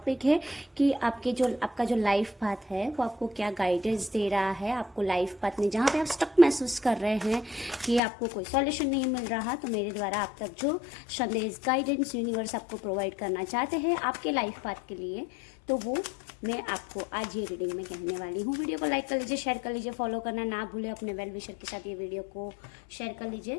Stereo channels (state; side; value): drops out; right; at 8.0 s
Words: है कि आपका जो लाइफ पाथ है वो आपको क्या गाइडेंस दे रहा है। आपको लाइफ पाथ में जहाँ पे आप स्टक महसूस कर रहे हैं कि आपको कोई सॉल्यूशन नहीं मिल रहा, तो मेरे द्वारा आप तक जो संदेश गाइडेंस यूनिवर्स आपको प्रोवाइड करना चाहते हैं आपके लाइफ पाथ के लिए, तो वो मैं आपको आज ये रीडिंग में कहने वाली हूँ। वीडियो को लाइक कर लीजिए, शेयर कर लीजिए, फॉलो करना ना भूलें। अपने वेल विशर के साथ ये वीडियो को शेयर कर